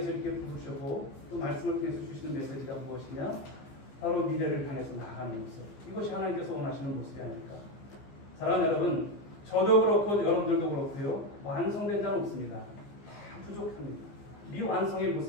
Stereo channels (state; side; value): late; right; 15 ms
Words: 이렇게 부르셨고 또 말씀을 통해서 주시는 메시지가 무엇이냐? 바로 미래를 향해서 나아가는 모습. 이것이 하나님께서 원하시는 모습이 아닐까. 사랑하는 여러분, 저도 그렇고 여러분들도 그렇고요. 완성된 자는 없습니다. 다 부족합니다. 미완성의